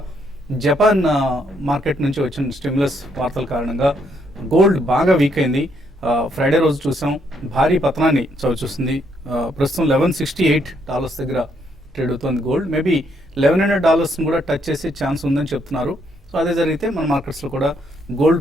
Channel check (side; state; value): both; normal; correlation 0.73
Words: జపాన్ మార్కెట్ నుంచి వచ్చిన స్టిమ్యులస్ వార్తల కారణంగా గోల్డ్ బాగా వీక్ అయింది. ఫ్రైడే రోజు చూసాం భారీ పతనాన్ని చవిచూస్తుంది. ప్రస్తుతం $1168 దగ్గర ట్రేడ్ అవుతుంది గోల్డ్. మేబీ $1100 కూడా టచ్ చేసే ఛాన్స్ ఉందని చెప్తున్నారు. సో అదే జరిగితే మన మార్కెట్స్లో కూడా